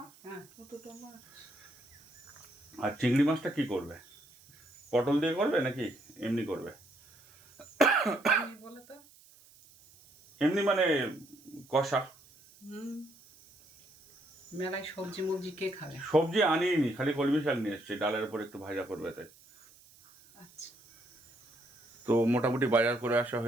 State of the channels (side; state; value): right; noise; hiss, 26 dB below the sound